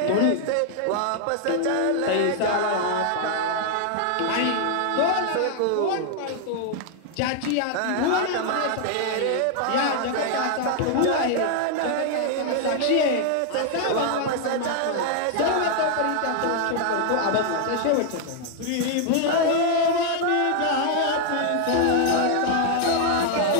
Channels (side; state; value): both; different; correlation 0.00